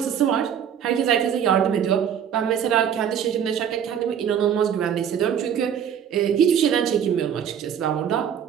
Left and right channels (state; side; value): quieter; left; 8.6 dB